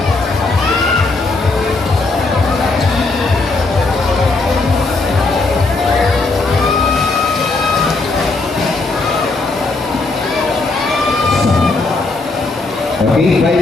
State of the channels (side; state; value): right; quieter; 3.5 dB